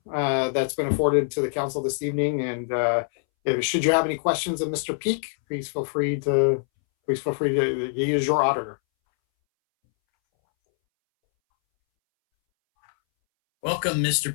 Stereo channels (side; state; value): right; silent; 62 dB below the other